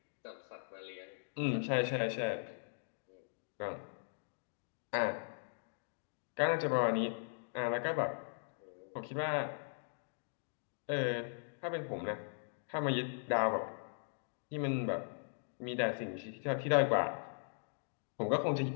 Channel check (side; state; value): right; silent; digital silence